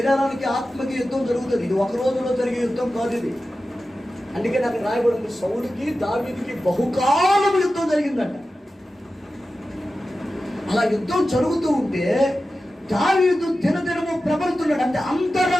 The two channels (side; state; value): both; normal; correlation 0.93